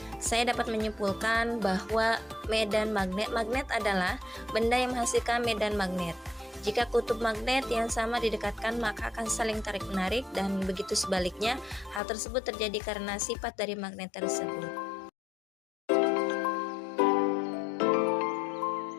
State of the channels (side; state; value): right; drops out; at 12.0 s